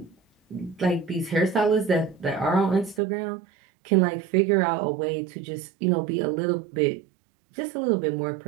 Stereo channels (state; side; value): drops out; left; at 3.0 s